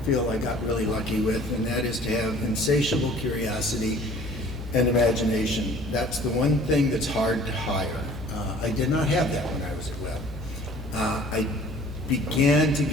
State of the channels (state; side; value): normal; both; correlation 0.50